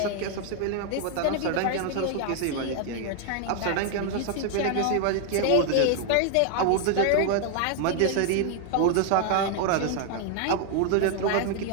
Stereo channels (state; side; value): different; both; correlation 0.00